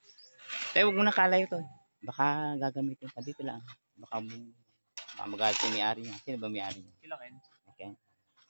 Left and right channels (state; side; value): inverted; both; correlation -1.00